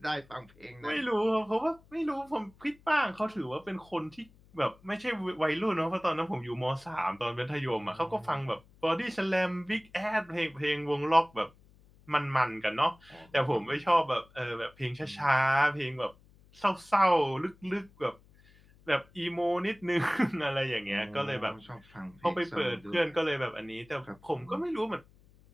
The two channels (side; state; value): left; noise; hum, 27 dB below the sound